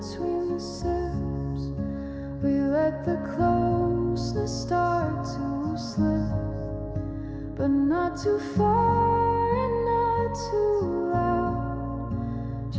the sips, we let the closeness start to slip, but not too far and not too loud,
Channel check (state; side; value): identical; both; correlation 1.00